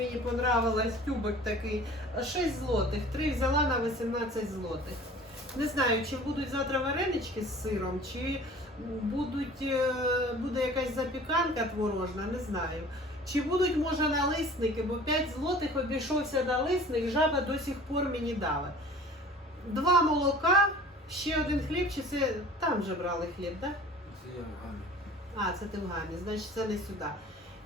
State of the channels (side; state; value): both; normal; correlation 0.45